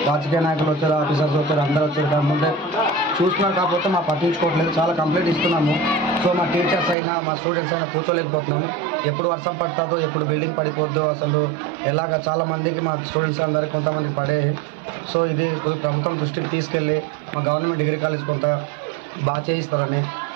రాజకీయ నాయకులు వచ్చారు, ఆఫీసర్స్ వచ్చారు, అందరూ వచ్చారు. కాకపోతే చూస్తున్నారు, కాకపోతే మా పట్టించుకోవట్లేదు. చాలా కంప్లైంట్ ఇస్తున్నాము. సో మా టీచర్స్ అయినా మా స్టూడెంట్స్ అయినా కూర్చోలేకపోతున్నాము. ఎప్పుడు వర్షం పడుతుందో, ఎప్పుడు బిల్డింగ్ పడిపోద్దో, అసలు ఎలాగ చాలా మందికి మా స్టూడెంట్స్ అందరికీ కొంతమంది పడే. సో ఇది ప్రభుత్వం దృష్టికి తీసుకెళ్ళి మా గవర్నమెంట్ డిగ్రీ కాలేజ్ కొంత బాగా చేయిస్తారని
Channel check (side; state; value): left; drops out; at 7.0 s